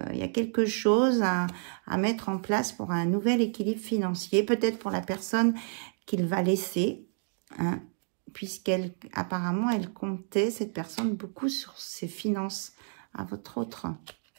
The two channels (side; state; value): left; silent; 58 dB below the other